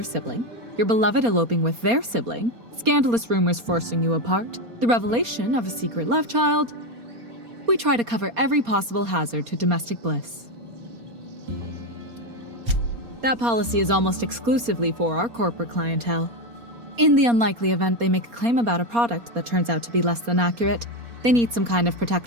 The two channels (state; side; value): late; left; 4.3 ms